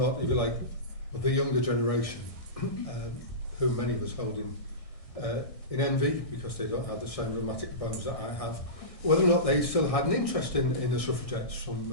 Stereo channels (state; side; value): late; right; 1.6 ms